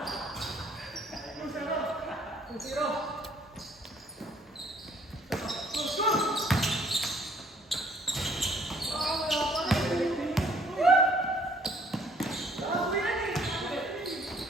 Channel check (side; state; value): both; normal; correlation 0.62